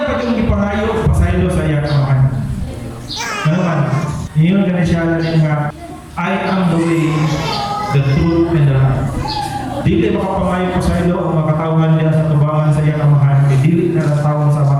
pa yung ipangayo, pasaylo sa iya kamahan. Ano man, yun ganun siya lang nga, I am the way, the truth, and the life. Dili makapangayo pa sa ilo ang makatawhan niya sa tubangan sa iyang amahan, dili na natawang sa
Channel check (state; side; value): identical; both; correlation 1.00